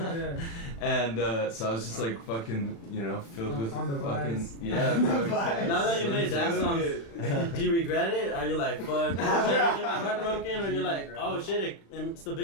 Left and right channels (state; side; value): late; right; 36 ms